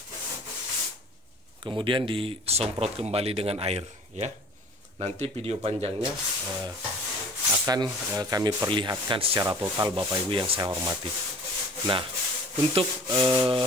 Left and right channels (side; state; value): both; normal; correlation 0.46